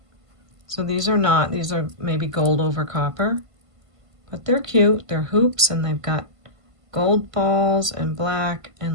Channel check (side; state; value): left; late; 1.5 ms